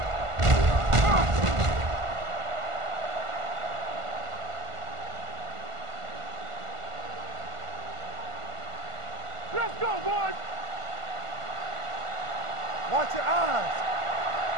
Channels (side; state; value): left; late; 1.5 ms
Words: Let's go, boys. Watch your eyes.